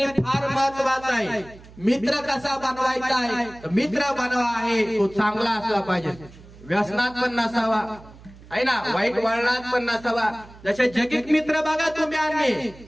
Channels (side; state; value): right; noise; hum, 21 dB below the sound